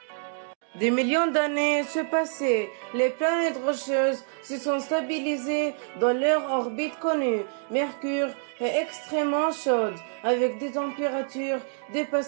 Des millions d'années se passaient, les planètes rocheuses se sont stabilisées dans leur orbite connue. Mercure est extrêmement chaude, avec des températures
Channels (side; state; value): left; silent; digital silence